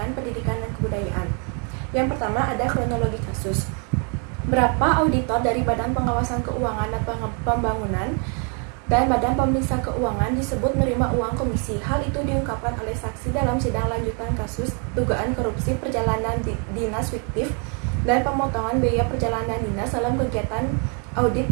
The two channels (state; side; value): quieter; left; 37.9 dB